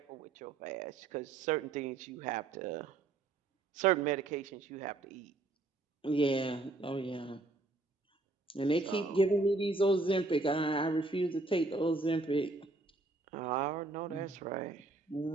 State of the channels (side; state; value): left; quieter; 3.2 dB